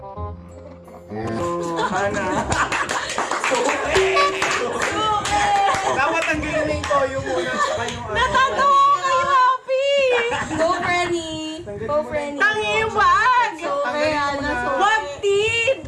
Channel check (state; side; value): identical; both; correlation 1.00